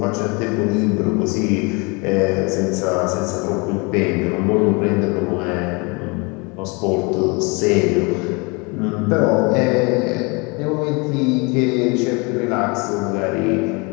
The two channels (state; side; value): quieter; right; 29.2 dB